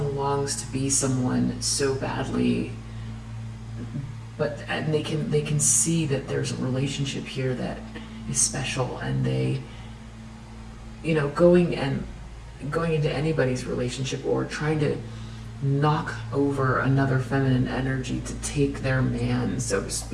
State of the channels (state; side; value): identical; both; correlation 1.00